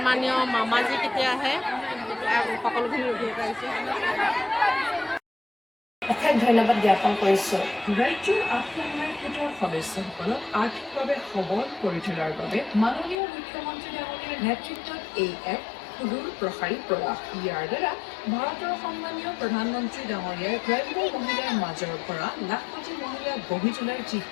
মামাজী কেতিয়া আহে সকলোখিনি ৰখি পাইছে অশেষ ধন্যবাদ জ্ঞাপন কৰিছোঁ। ৰাজ্যৰ আত্মসহায়ক গোটৰ সদস্যসকলক আৰ্থিকভাৱে সবল কৰি তোলাৰ বাবে মাননীয় মুখ্যমন্ত্ৰী ডাঙৰীয়াৰ নেতৃত্বত এই এক সুদূৰ প্ৰসাৰী প্ৰয়াস। ইয়াৰ দ্বাৰা ভাৰতৰ সন্মানীয় প্ৰধানমন্ত্ৰী ডাঙৰীয়াৰ গ্ৰাম্য মহিলাৰ মাজৰ পৰা লাখপতি মহিলা গঢ়ি তোলাৰ যি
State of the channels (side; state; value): right; drops out; at 13.2 s